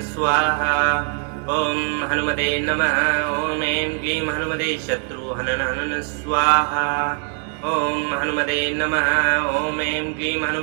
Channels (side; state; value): left; quieter; 36.9 dB